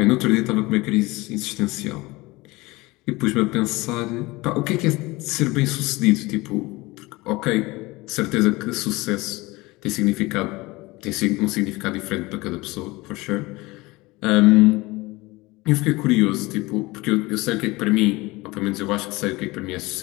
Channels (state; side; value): quieter; right; 21.8 dB